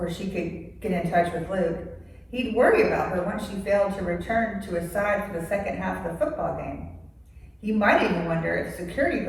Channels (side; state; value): both; identical; correlation 1.00